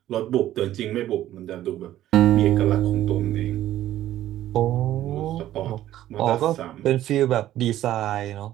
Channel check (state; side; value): quieter; left; 13.3 dB